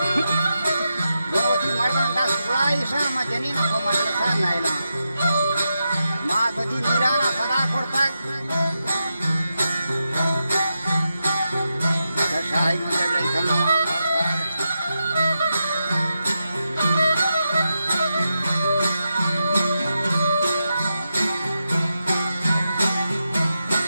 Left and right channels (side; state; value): both; inverted; correlation -0.88